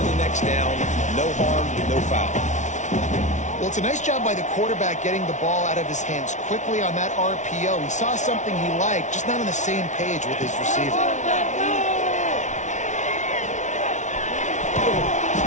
the next down. No harm, no foul. Well, it's a nice job by the quarterback getting the ball out of his hands quickly on that RPO. He saw something he liked, just not on the same page with his receiver.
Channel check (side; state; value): right; late; 0.35 ms